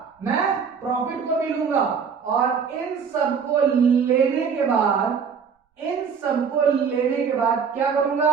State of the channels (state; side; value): quieter; left; 6.4 dB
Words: मैं प्रॉफिट को भी लूंगा, और इन सबको लेने के बाद, इन सबको लेने के बाद क्या करूंगा,